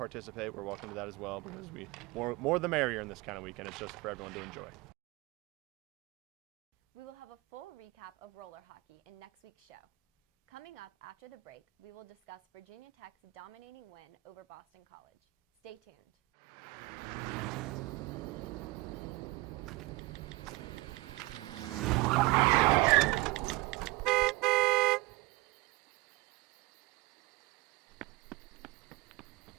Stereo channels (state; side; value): quieter; left; 22.2 dB